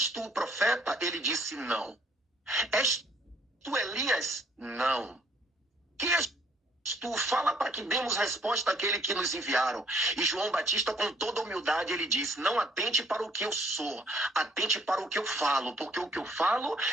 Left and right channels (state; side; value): normal; both; correlation 0.64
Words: tu o profeta? Ele disse: não. És tu Elias? Não. Quem és tu? Fala para que demos resposta àquele que nos enviaram. E João Batista, com toda humildade, ele disse: não atente para o que eu sou, atente para o que eu falo, porque o que eu falo